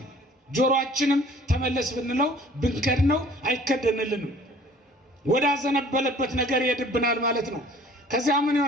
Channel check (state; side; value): normal; both; correlation 0.52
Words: ጆሮአችንም ተመለስ ብንለው ብንከድነው አይከደንልንም። ወደ አዘነበለበት ነገር ይሄድብናል ማለት ነው። ከዚያ ምን